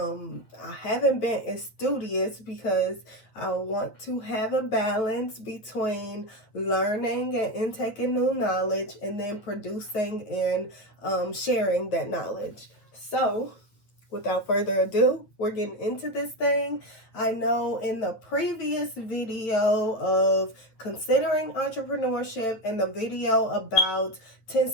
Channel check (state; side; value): late; right; 9.0 ms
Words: haven't been as studious because I want to have a balance between learning and intaking new knowledge and then producing and sharing that knowledge. So, without further ado, we're getting into this thing. I know in the previous video of considering entrepreneurship and the video about 10